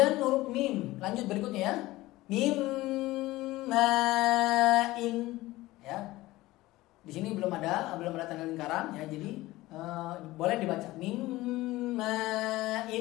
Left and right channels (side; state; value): right; quieter; 18.2 dB